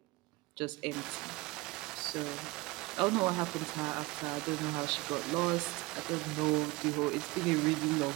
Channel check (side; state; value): left; quieter; 22.6 dB